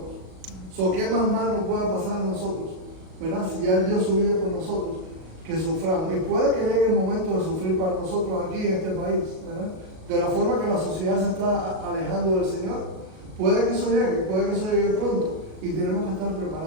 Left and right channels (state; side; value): late; left; 38 ms